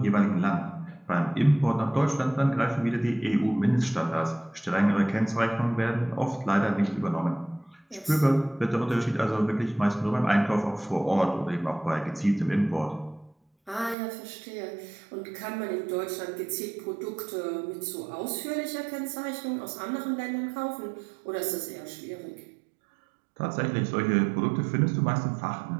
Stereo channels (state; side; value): drops out; left; at 14.0 s